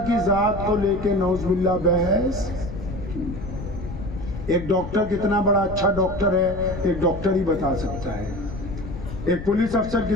की जात को लेके नौज़ुबिल्लाह बहस की। एक डॉक्टर कितना बड़ा अच्छा डॉक्टर है, एक डॉक्टर ही बता सकता है। एक पुलिस अफसर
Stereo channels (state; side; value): noise; left; rumble, 9 dB below the sound